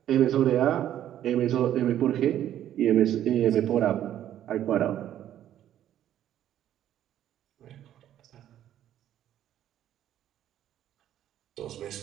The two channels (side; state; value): left; quieter; 11.5 dB